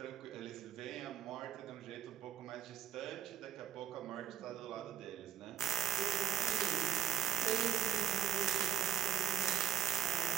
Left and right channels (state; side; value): quieter; left; 10.4 dB